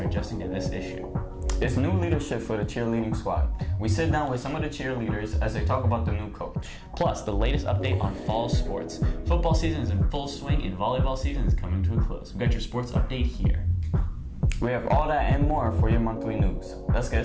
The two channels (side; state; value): both; identical; correlation 1.00